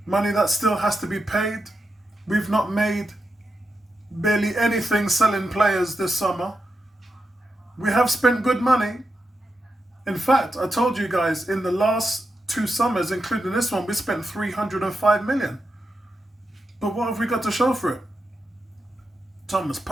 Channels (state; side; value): normal; both; correlation 0.87